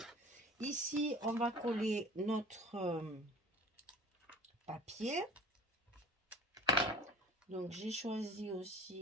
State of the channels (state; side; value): normal; both; correlation 0.43